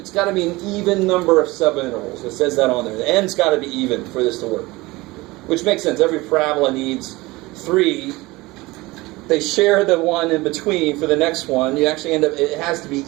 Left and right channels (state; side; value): quieter; left; 21.2 dB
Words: got to be an even number of subintervals. It says that on there. The n's got to be even for this to work. Which makes sense. Every parabola needs 3. They share the one in between for the next one. You actually end up, it has to be